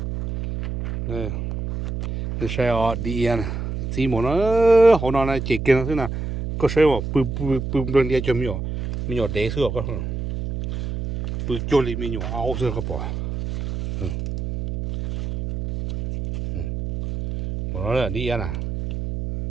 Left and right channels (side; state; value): right; noise; hum, 5 dB below the sound